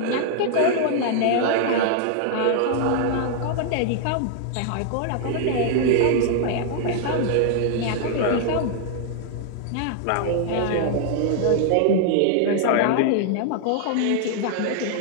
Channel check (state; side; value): different; both; correlation 0.00